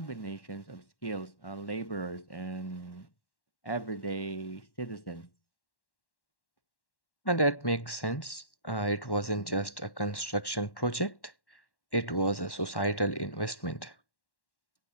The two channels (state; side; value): late; right; 1.1 ms